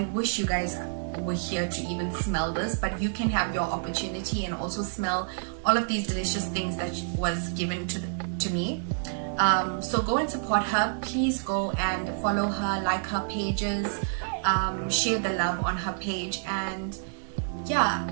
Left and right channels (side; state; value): left; silent; digital silence